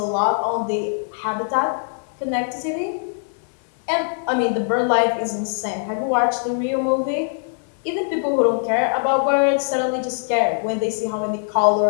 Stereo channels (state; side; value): silent; right; digital silence